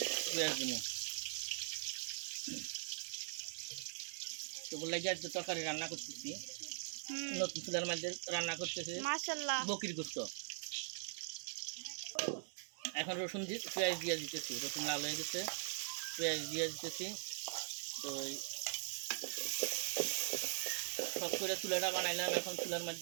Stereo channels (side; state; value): left; silent; digital silence